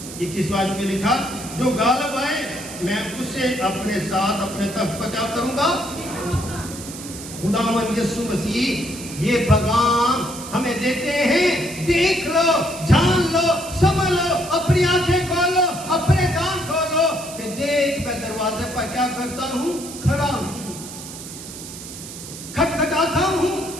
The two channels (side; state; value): right; noise; hiss, 12 dB below the sound